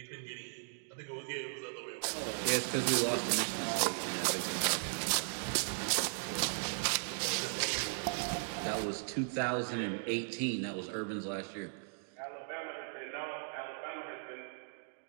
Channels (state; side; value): silent; left; digital silence